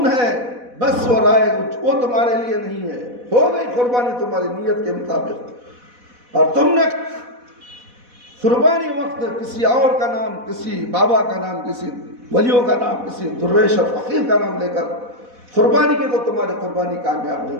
ہے، بس وہ رائے وہ تمہارے لیے نہیں ہے. ہو گئی قربانی تمہاری نیت کے مطابق. اور تم نے قربانی وقت کسی اور کا نام، کسی بابا کا نام، کسی ولیوں کا نام، کسی درویش اور فقیر کا نام لے کر قربانی کی تو تمہاری قربانی کامیاب نہیں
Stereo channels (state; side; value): late; left; 4.1 ms